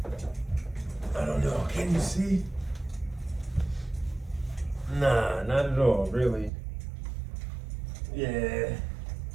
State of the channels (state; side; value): drops out; left; at 6.5 s